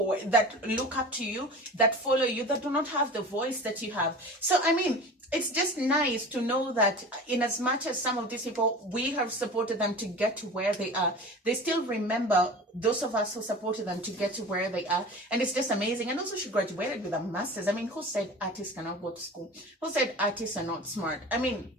that look up to you, that follow you, that do not have the voice that you have. So, I mean, it's just nice to know that in as much as some of these people, we have supported them to get to where they are, they still remember those of us who supported them to get to where they are. And it's just amazing. And also, she graduated with a master's. I mean, who said artists cannot go to school? Who said artists are not smart? I mean,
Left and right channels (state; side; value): normal; both; correlation 0.36